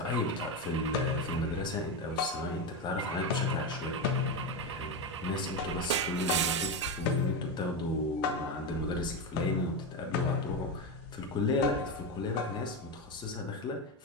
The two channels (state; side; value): normal; both; correlation 0.14